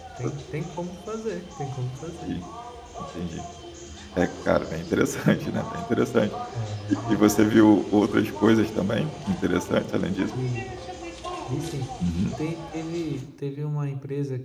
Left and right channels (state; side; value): identical; both; correlation 1.00